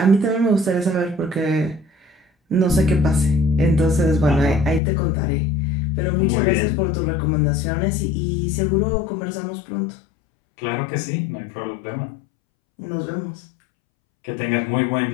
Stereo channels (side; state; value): right; drops out; at 4.8 s